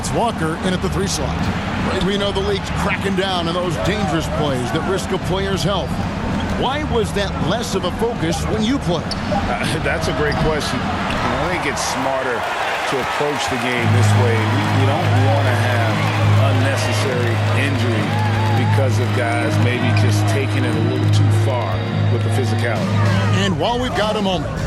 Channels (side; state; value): both; identical; correlation 1.00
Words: Walker in at the 3 slot. We know the league's cracking down on those dangerous plays that risk a player's health. Why was that less of a focus when you played? That's a great question. I think it's smarter to approach the game this way. We don't want to have unnecessary injury because of guys maybe just taking it a little too far with the physicality. And while we've got a moment,